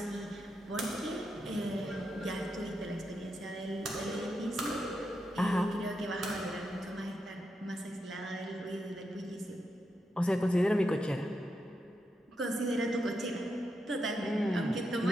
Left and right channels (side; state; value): both; normal; correlation 0.85